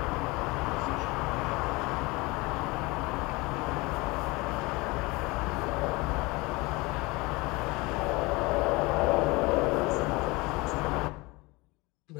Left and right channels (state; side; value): quieter; right; 23.7 dB